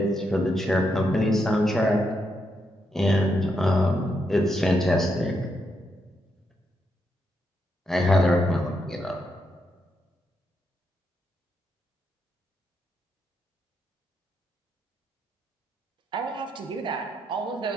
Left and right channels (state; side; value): normal; both; correlation 0.81